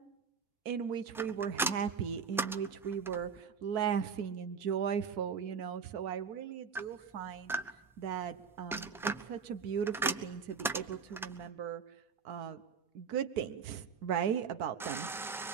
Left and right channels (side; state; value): left; quieter; 6.1 dB